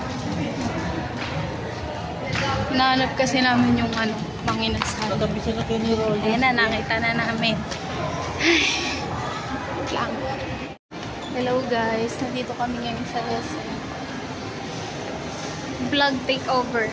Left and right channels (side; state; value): both; identical; correlation 1.00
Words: Hinahanap kasi namin yung ano, mga inasal. Ayan na, nakita na namin. Ay, lang. Hello guys, nandito kami ngayon sa SM. Vlog takeover